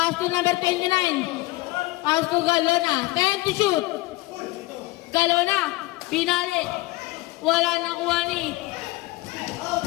to number 29. Pass to Galona. 10 to shoot. Galona, pinali. Wala nakuha ni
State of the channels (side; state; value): right; quieter; 20.8 dB